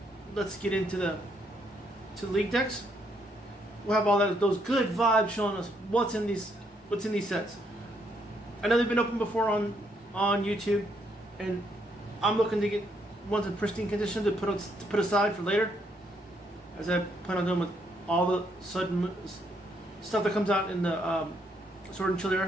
let's get into the league decks. We'll have all those good vibes showing us what's in these sets. I know they've been opened before on YouTube, and I'm looking to get ones in pristine condition to put aside for later, as I plan on doing with all the sudden stuff that comes out in the Sword and Shield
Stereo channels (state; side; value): normal; both; correlation 0.73